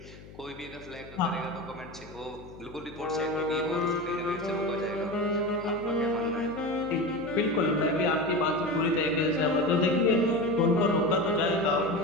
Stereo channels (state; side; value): noise; left; hum, 18 dB below the sound